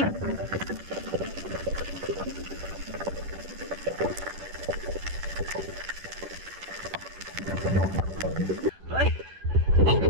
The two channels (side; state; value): left; late; 10 ms